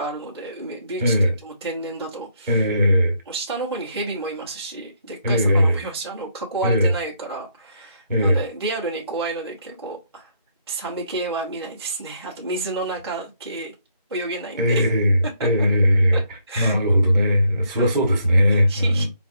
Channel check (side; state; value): both; inverted; correlation -0.72